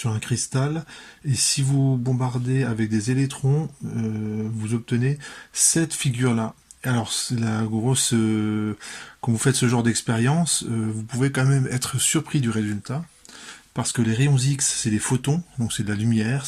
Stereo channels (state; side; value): identical; both; correlation 1.00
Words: un cristal. Et si vous bombardez avec des électrons, vous obtenez cette figure-là. Alors, c'est la grosse. Quand vous faites ce genre d'expérience, vous pouvez quand même être surpris du résultat. Parce que les rayons X, c'est des photons, donc c'est de la lumière,